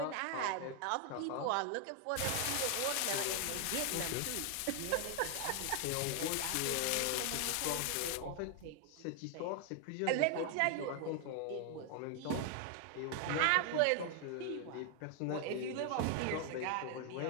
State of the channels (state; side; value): different; both; correlation 0.00